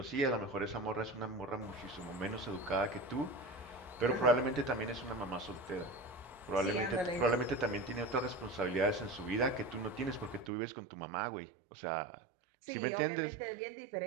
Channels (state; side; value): drops out; left; at 10.5 s